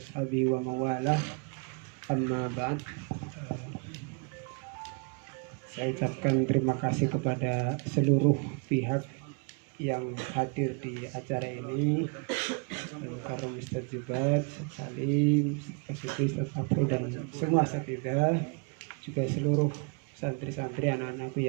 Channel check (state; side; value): quieter; left; 34.5 dB